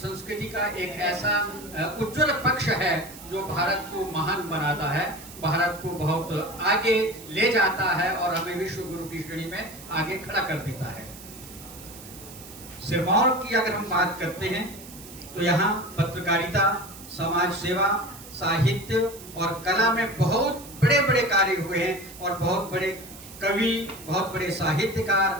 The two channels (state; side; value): noise; right; hiss, 16 dB below the sound